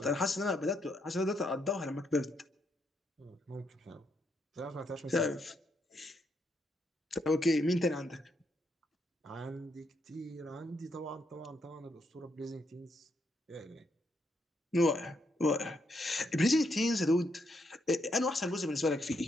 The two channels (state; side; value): normal; both; correlation 0.77